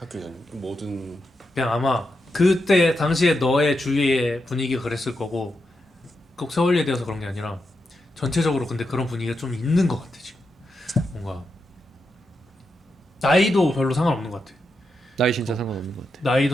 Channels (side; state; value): both; normal; correlation 0.86